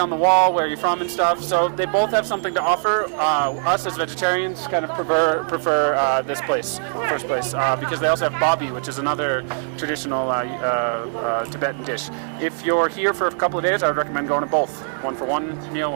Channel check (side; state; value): left; silent; 58 dB below the other